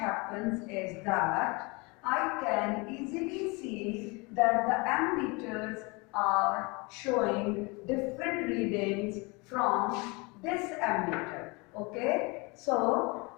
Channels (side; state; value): right; quieter; 27.6 dB